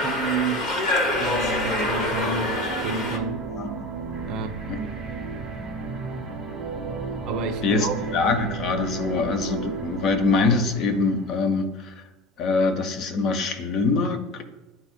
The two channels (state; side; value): normal; both; correlation 0.32